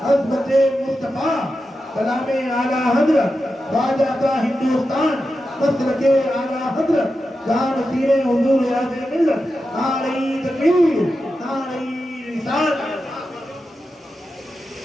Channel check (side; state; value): both; normal; correlation 0.90